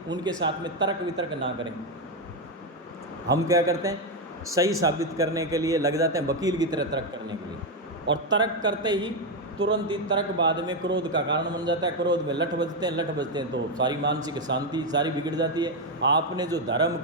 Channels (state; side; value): normal; both; correlation 0.06